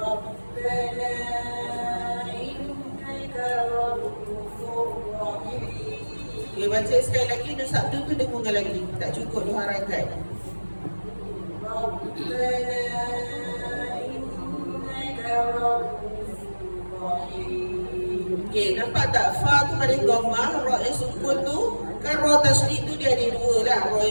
Okay, baca sekali lagi. Nur Sabtu tu dengung lagi. Tak cukup 2 harakat. Okay, nampak tak? Fa tu pada dhammah, ra yang sukun tu, kan ra tasydid tu dia ada 2 lah. Ra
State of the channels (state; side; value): inverted; both; correlation -1.00